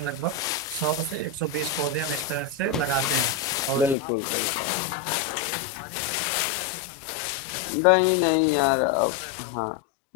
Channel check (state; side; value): drops out; right; at 4.0 s